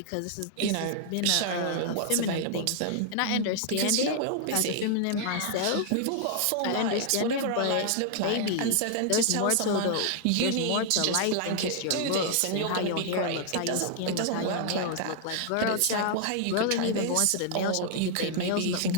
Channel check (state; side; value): different; both; correlation 0.00